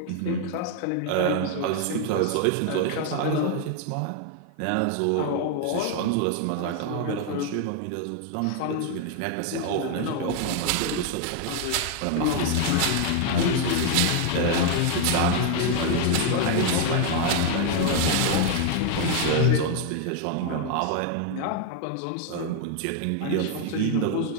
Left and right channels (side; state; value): both; different; correlation 0.00